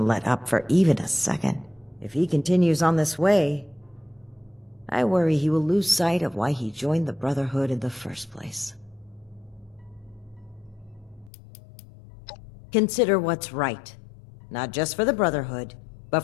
let up for even a second. If he continues on this way, I worry he will lose sight of why he joined the Brotherhood in the first place. Consider what's right, not just for the Brotherhood, but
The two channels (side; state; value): right; drops out; at 11.3 s